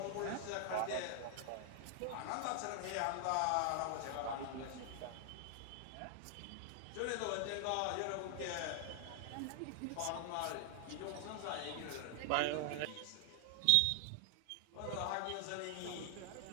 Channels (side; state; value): both; different; correlation 0.00